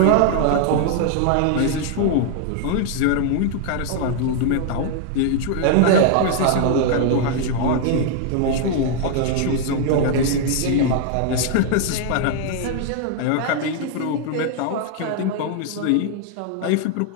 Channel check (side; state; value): both; different; correlation 0.00